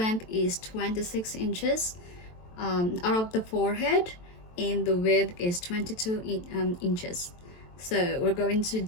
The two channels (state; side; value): late; right; 23 ms